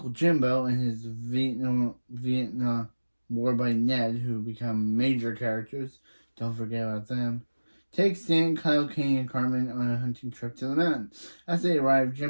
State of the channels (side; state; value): both; inverted; correlation -1.00